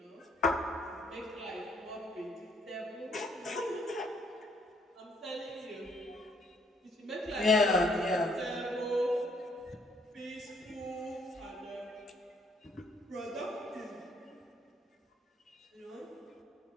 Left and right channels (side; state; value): both; normal; correlation 0.67